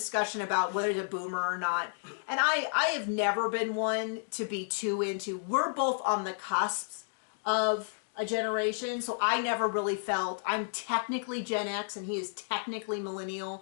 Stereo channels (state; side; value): silent; right; digital silence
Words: about whether he's a boomer or not. And I have never been one to be too into, we're both on the cusps of a generation, so I never really felt, I'm technically Gen X and he is technically